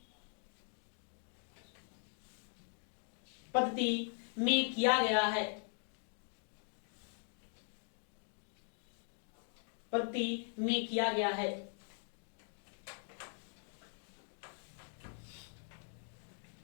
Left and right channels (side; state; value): right; silent; 50 dB below the other